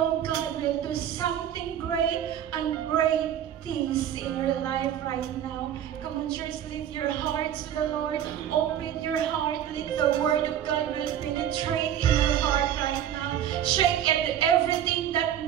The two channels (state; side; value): quieter; left; 10.3 dB